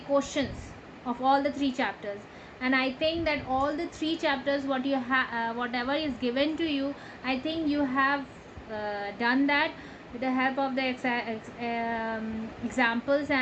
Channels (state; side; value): identical; both; correlation 1.00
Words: of all the 3 chapters. And I think that all the 3 chapters whatever is given to you, I think you have done that with the help of the examples